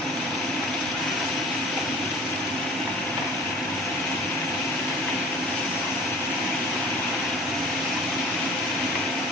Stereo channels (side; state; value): both; normal; correlation 0.45